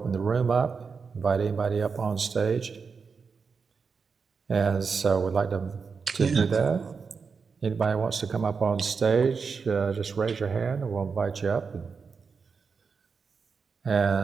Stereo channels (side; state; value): left; quieter; 5.4 dB